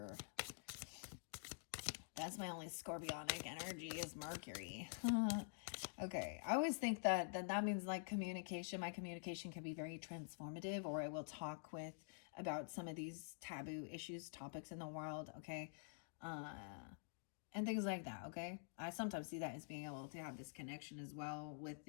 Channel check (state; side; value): silent; right; digital silence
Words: That's my only scorpionic energy is Mercury. Okay, I always think that means like communication. My communication can be very transformative, or I will talk about some of these taboo issues, topics in the world, okay? And things like that, okay? I sometimes see that as being able to have this connection as well with